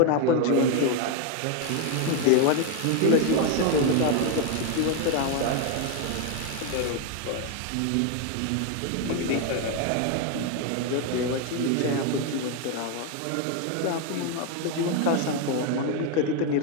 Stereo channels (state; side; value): different; both; correlation 0.01